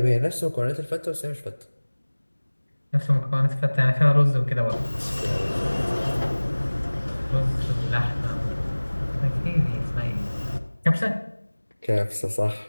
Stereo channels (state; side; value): inverted; both; correlation -1.00